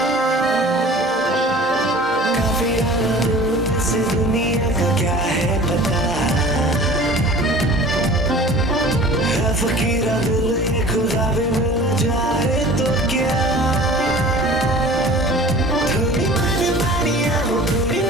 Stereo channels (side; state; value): both; normal; correlation 0.43